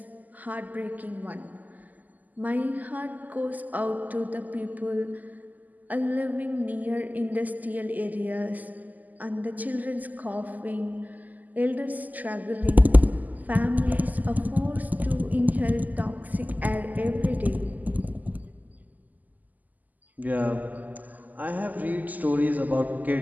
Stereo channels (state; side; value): late; left; 0.081 ms